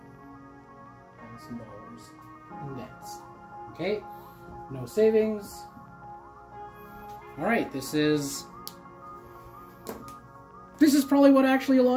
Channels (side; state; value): both; identical; correlation 1.00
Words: in debts. Okay, no savings. All right, this is probably what actually a